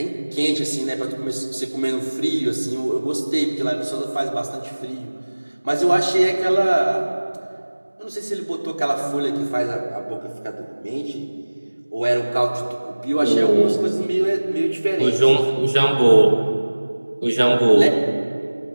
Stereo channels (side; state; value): both; inverted; correlation -1.00